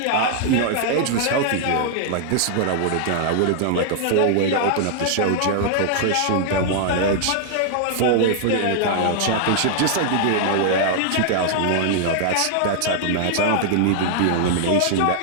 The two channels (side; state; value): both; different; correlation -0.01